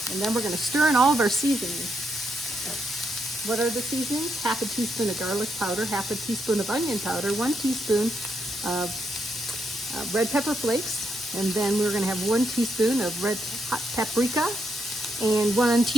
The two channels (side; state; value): both; normal; correlation 0.80